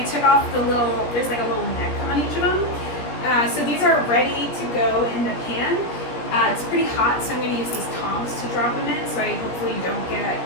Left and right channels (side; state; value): right; late; 17 ms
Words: took off there's like a little neck on each of them. So these are ready to go in the pan. It's pretty hot, so I'm going to use these tongs to drop them in so I hopefully don't get